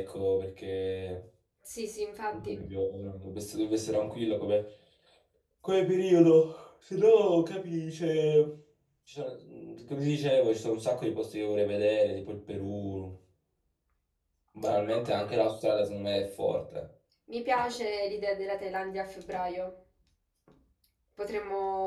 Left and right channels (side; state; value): both; identical; correlation 1.00